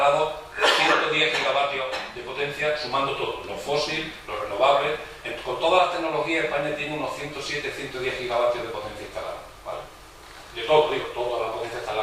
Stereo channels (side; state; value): both; identical; correlation 1.00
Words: 110 gigavatios de potencia, sumando todo, los fósiles, los renovables. Con todas las tecnologías, España tiene unos 107, 110 gigavatios de potencia instalada, ¿vale? De todo, digo, toda la potencia